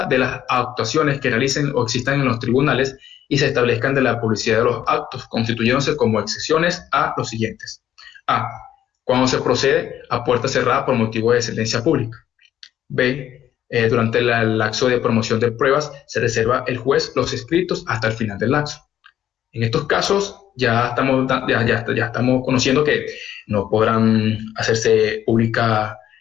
de las actuaciones que realicen o existan en los tribunales y se establezcan de la publicidad de los actos, constituyéndose como excepciones a los siguientes. A. Cuando se procede a puerta cerrada por motivo de sentencia pública. B. Durante el lapso de promoción de pruebas se reserva el juez los escritos hasta el final del lapso. En estos casos ya estamos conociendo que no podrán hacerse pública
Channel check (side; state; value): right; quieter; 11.1 dB